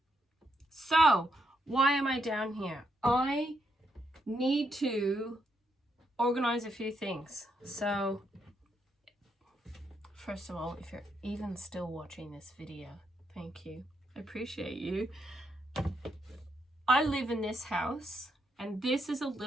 So, why am I down here? I need to organize a few things. So, first of all, if you're even still watching this video, thank you. I appreciate you. I live in this house And this is a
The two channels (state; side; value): normal; both; correlation 0.78